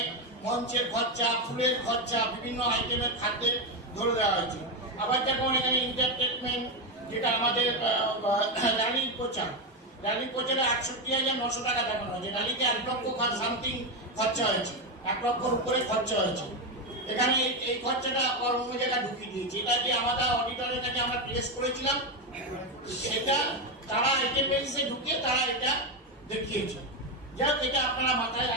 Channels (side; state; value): both; normal; correlation 0.10